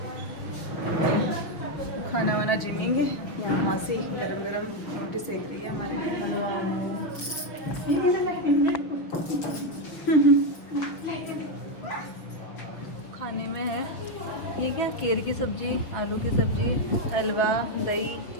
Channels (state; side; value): late; right; 6.2 ms